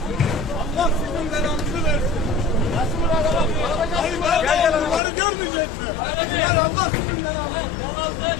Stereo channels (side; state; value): right; drops out; at 5.0 s